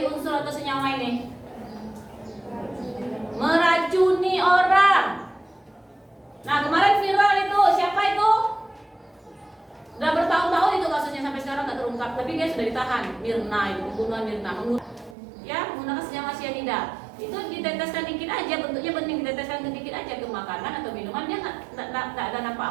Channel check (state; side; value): drops out; left; at 15.2 s